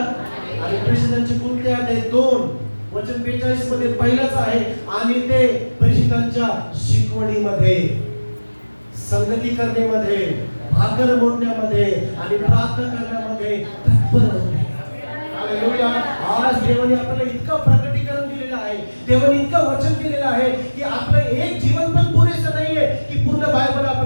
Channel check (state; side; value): inverted; both; correlation -1.00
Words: आणि प्रेषितांचे कोणते आहेत? 2 वचन 42 मध्ये पहिलाच आहे, आणि ते प्रेषितांच्या शिकवणीमध्ये, संगती करण्यामध्ये, भाकर मोडण्यामध्ये आणि प्रार्थना करण्यामध्ये तत्पर होते. हालेलुया. आज देवाने आपल्याला इतकं प्रकटीकरण दिलेलं आहे, देवाने इतकं वचन दिलेलं आहे की आपलं एक जीवन पण पुरेसं नाहीये की पूर्ण बायबल